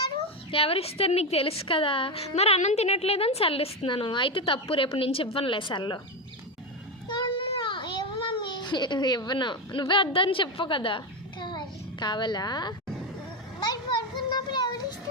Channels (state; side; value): normal; both; correlation 0.12